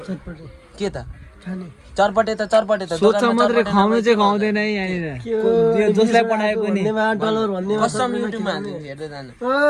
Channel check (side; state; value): both; identical; correlation 1.00